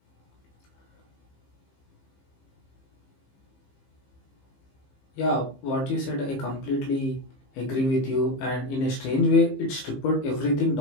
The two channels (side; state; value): right; late; 15 ms